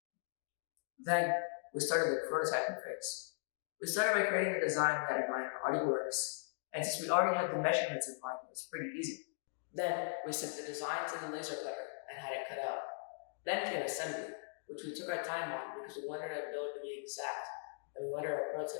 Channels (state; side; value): silent; right; digital silence